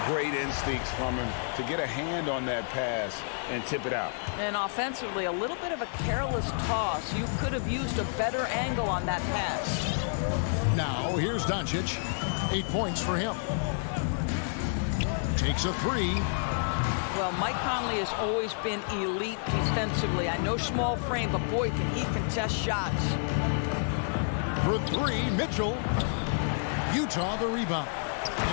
Great instincts from him to get a hand on that pass and tip it out. And offensively, a little bit of a careless toss. You could have used a better angle on that pass. Now, here's Doncic. 8 points for him. Takes a 3. Well, Mike Conley has always been elite defensively. I know small frame, but boy, can he contest shots. For 3, Mitchell. Utah the rebound.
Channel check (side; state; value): right; silent; digital silence